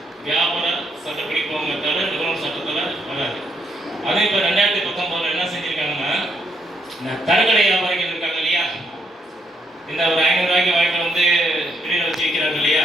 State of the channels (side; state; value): both; normal; correlation 0.75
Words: வியாபார சட்டப்படி போங்க தவிர நுகர்வோர் சட்டத்தில் வராது. அதே இப்போ 2019 என்ன செஞ்சுருக்காங்கன்னா, தரக்கடை வியாபாரிகள் இருக்காங்க இல்லையா, இந்த ஒரு 500 ரூபாய்க்கு வாங்கிட்டு வந்து வெளியில் வச்சு விற்கிறாங்க இல்லையா,